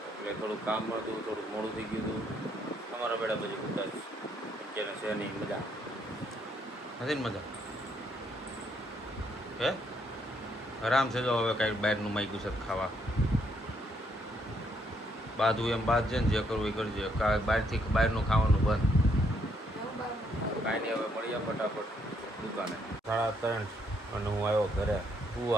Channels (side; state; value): both; normal; correlation 0.72